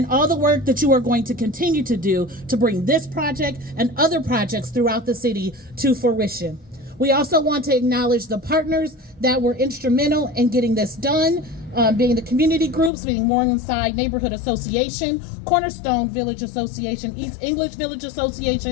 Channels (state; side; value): drops out; right; at 12.9 s